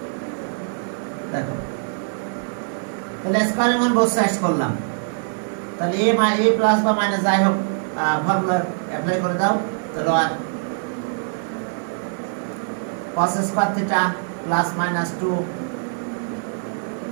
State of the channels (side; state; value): left; silent; 57 dB below the other